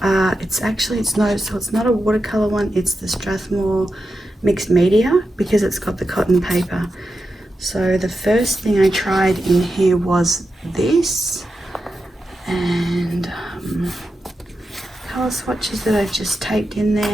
It's not a watercolor one, it's the Strathmore mixed media, because it's got the cotton paper. So the first thing I tried in here was this, and color swatches that I've just taped in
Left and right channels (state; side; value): normal; both; correlation 0.89